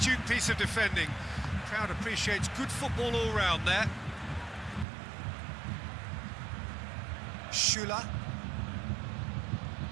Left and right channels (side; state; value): left; drops out; at 4.9 s